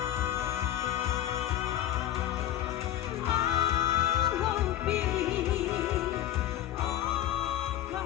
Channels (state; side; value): quieter; right; 12.4 dB